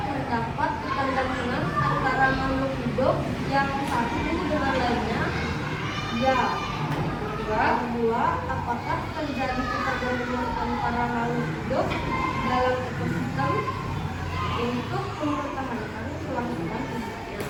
ketergantungan antara makhluk hidup yang satu dengan lainnya? Ya. Kedua, apakah terjadi ketergantungan antara makhluk hidup dalam ekosistem untuk mempertahankan kelangsungan hidupnya?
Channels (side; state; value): both; identical; correlation 1.00